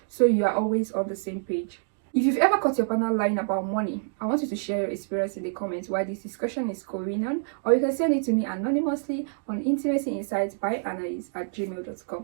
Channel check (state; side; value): silent; left; digital silence